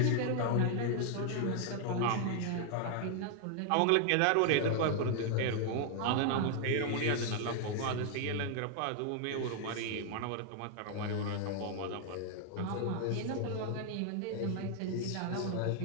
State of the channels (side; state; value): both; different; correlation 0.00